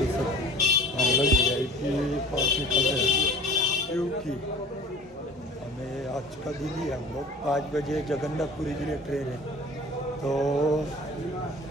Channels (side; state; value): both; normal; correlation 0.45